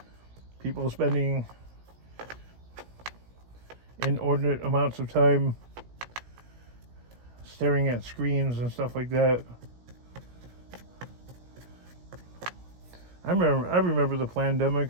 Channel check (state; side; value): late; left; 17 ms